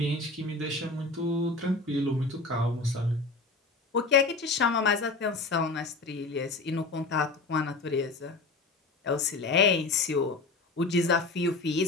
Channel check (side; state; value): right; quieter; 3.6 dB